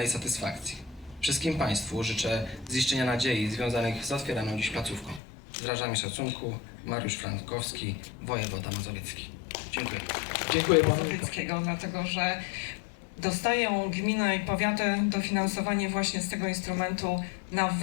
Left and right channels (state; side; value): drops out; right; at 5.2 s